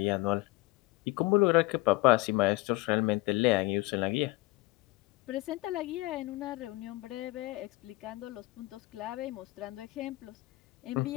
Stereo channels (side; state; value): right; quieter; 20.2 dB